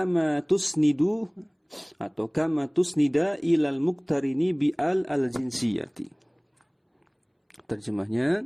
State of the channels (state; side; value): identical; both; correlation 1.00